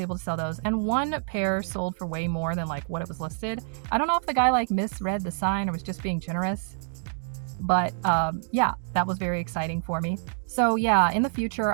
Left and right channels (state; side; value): silent; left; 60 dB below the other